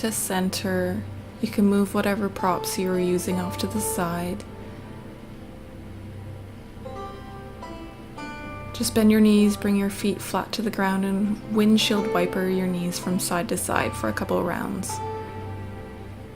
center. You can move whatever props you were using off to the side. Just bend your knees, bring your feet flat to the ground, and windshield wiper your knees from side to side for a couple of rounds.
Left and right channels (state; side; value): identical; both; correlation 1.00